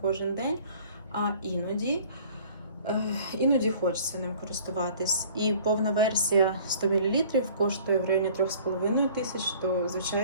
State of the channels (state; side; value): inverted; both; correlation -0.51